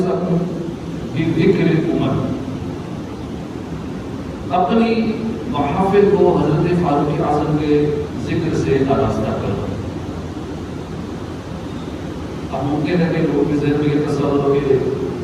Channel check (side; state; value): both; identical; correlation 1.00